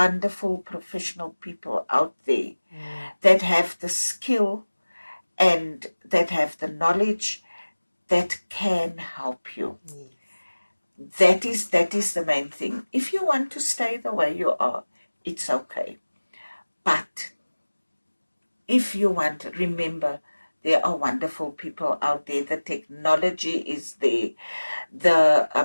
professional people out there that have the skill and that have the knowledge that can help you. That is the main thing. If you want to stay the way you are, it's okay. But if you want, remember, there are wonderful people out there. The technology is there.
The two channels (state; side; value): inverted; both; correlation -1.00